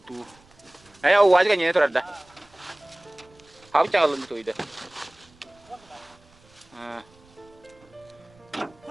тут. А я у вас гоню это рада. How чало на то иде.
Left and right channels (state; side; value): noise; right; rumble, 29 dB below the sound